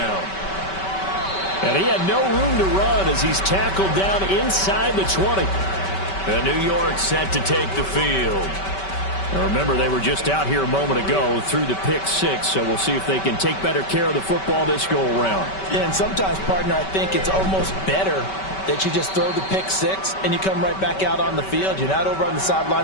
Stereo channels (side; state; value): right; late; 5.2 ms